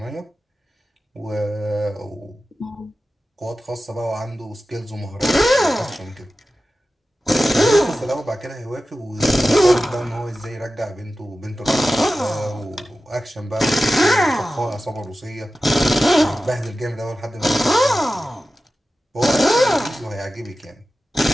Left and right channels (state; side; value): normal; both; correlation 0.94